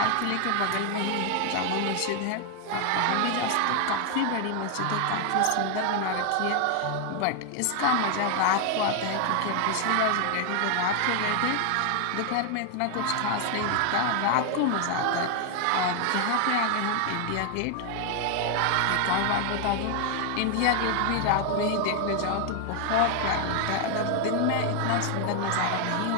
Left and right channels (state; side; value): different; both; correlation 0.00